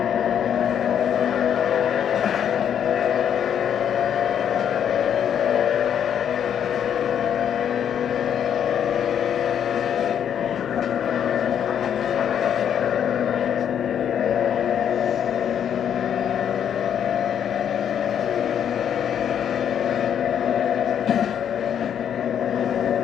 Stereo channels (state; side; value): quieter; right; 8.9 dB